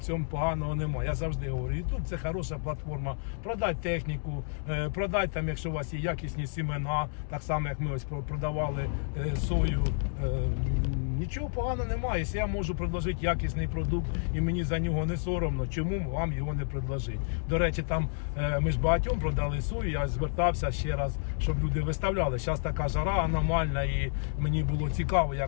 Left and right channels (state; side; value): silent; right; digital silence